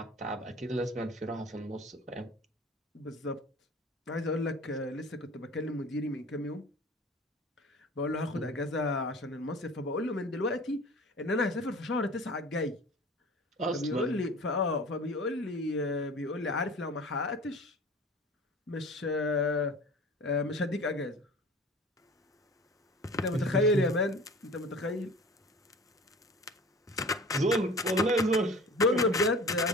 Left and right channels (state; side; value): normal; both; correlation 0.41